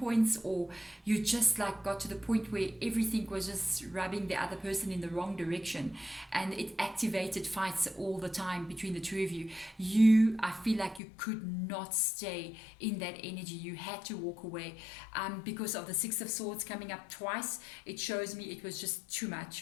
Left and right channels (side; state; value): right; drops out; at 11.0 s